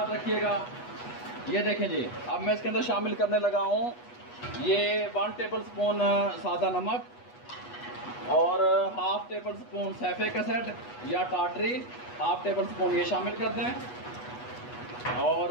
रखिएगा। ये देखें जी, अब मैं इसके अंदर शामिल करने लगा हूँ ये 1 टेबल स्पून सादा नमक, और हाफ टेबल स्पून सैफे कैसेट या टाटरी, हाफ टेबल स्पून ये शामिल कर दें।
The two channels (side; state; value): right; late; 8.2 ms